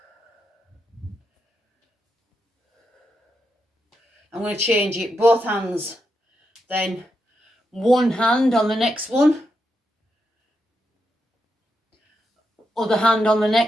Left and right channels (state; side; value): normal; both; correlation 0.84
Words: I'm going to change it, both hands, then one hand on the next one, other hand on the